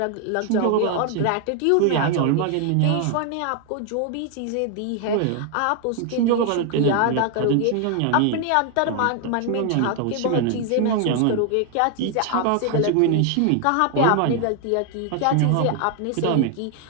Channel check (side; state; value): both; different; correlation 0.00